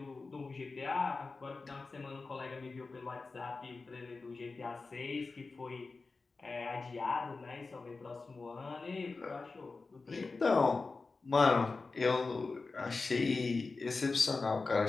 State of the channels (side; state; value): right; quieter; 4.0 dB